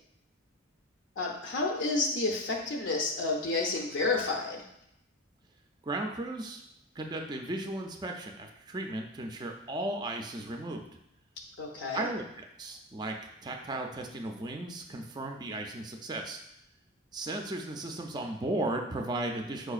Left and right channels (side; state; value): both; normal; correlation 0.21